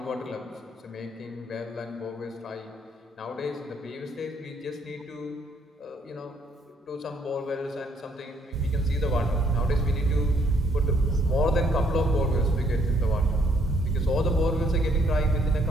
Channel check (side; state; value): both; normal; correlation 0.67